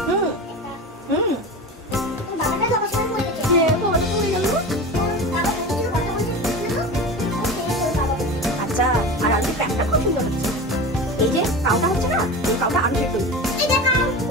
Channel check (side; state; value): both; normal; correlation 0.29